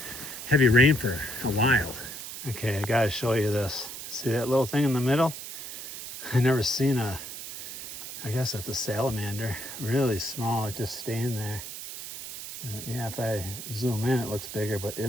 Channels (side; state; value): right; noise; hiss, 9 dB below the sound